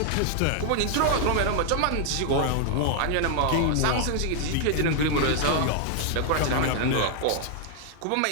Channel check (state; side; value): different; both; correlation 0.00